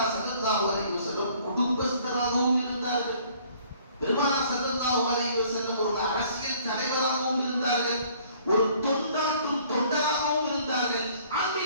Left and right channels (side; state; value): both; inverted; correlation -0.57